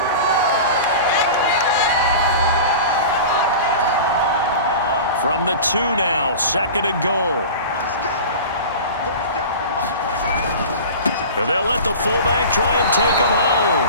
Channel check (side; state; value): both; inverted; correlation -0.34